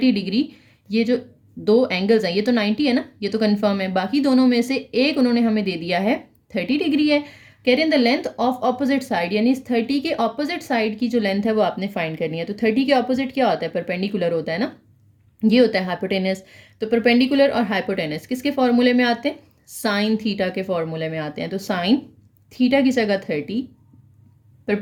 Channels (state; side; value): identical; both; correlation 1.00